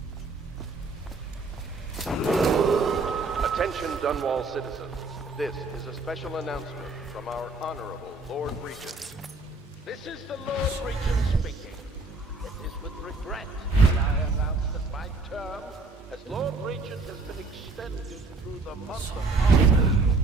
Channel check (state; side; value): quieter; left; 3.5 dB